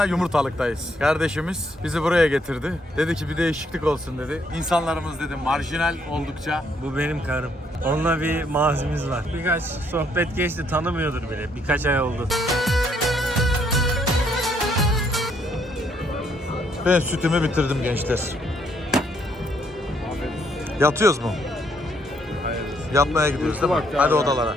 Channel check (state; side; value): normal; both; correlation 0.70